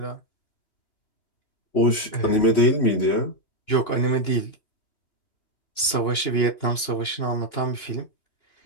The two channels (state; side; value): late; right; 2.9 ms